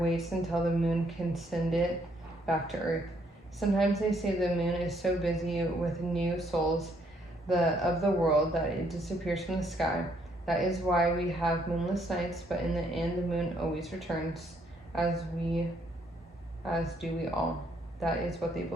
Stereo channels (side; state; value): both; normal; correlation 0.69